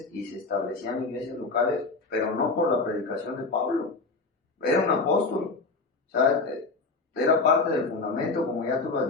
y se establecían iglesias locales, pero no por la predicación de Pablo. Era un apóstol, o sea, era parte del fundamento, como ya tú lo has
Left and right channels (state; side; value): quieter; right; 3.8 dB